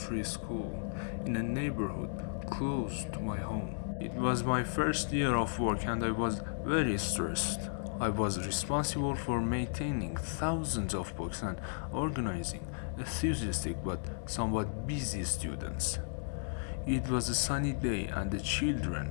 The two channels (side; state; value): right; silent; digital silence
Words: school in a neighborhood close to my home. It was my first year of work and I was very stressed. I was responsible for maintaining thousands of books and organizing enthusiastic but somewhat busy students. It was a sunny day and the